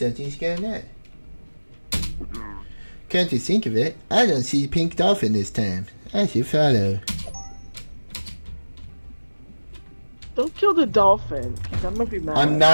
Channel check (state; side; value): inverted; both; correlation -1.00